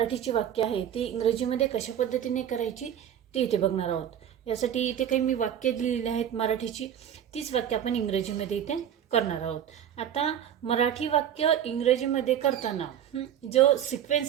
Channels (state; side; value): quieter; left; 9.7 dB